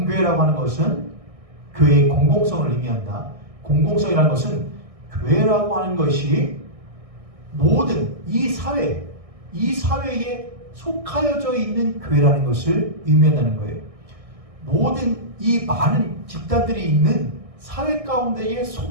하는 것은 교회의 공공성을 의미한다. 공공성이라는 것은 교회라고 하는 것이 모든 이 사회에 속하여져 있는 교회라는 것을 의미한다는 거예요. 모든 이 많은 집단들이 있는 사회 가운데에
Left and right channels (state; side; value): late; left; 1.6 ms